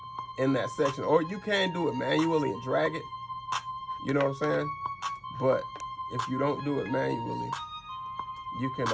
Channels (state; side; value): identical; both; correlation 1.00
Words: in that section. Or you can do it manually and drag it. You know what I'm saying? But if you don't do it manually, you can